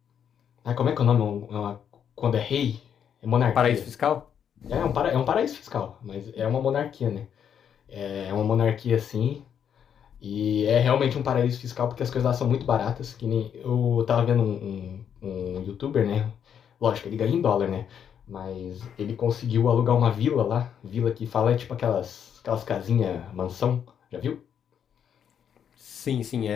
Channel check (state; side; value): quieter; right; 8.4 dB